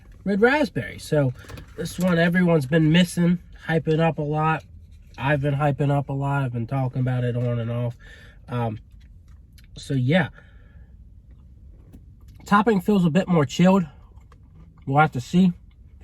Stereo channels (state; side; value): identical; both; correlation 1.00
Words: red raspberry. So this one everyone's been missing, hyping up a lot. I've been hyping up a lot. I've been talking about it on and off. So yeah. Topping feels a bit more chilled. We'll have to see.